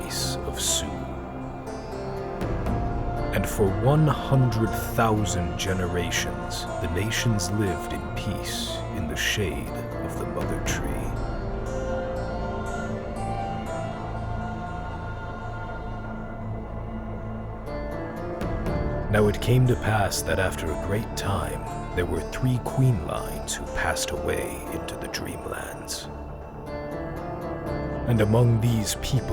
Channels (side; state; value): both; identical; correlation 1.00